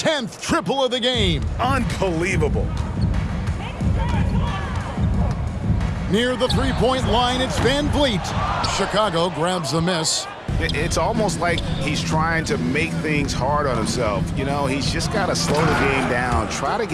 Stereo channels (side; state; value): both; identical; correlation 1.00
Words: triple of the game. Unbelievable. Near the three-point line, it's Van Vliet. Chicago grabs the miss. It's almost like he's trying to make things hard on himself. You know, he's just got to slow the game down, try to